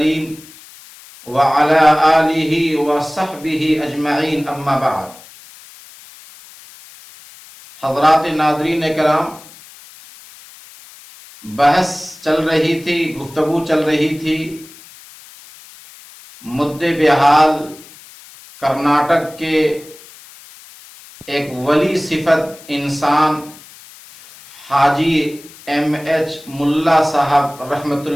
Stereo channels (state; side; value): noise; left; hiss, 21 dB below the sound